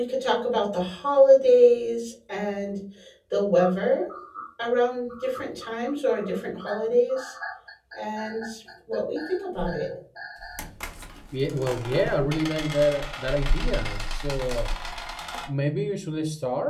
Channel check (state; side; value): identical; both; correlation 1.00